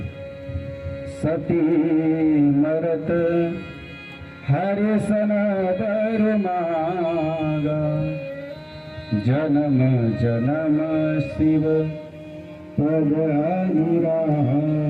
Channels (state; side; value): identical; both; correlation 1.00